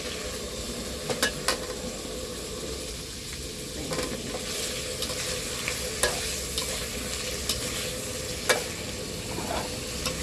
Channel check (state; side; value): identical; both; correlation 1.00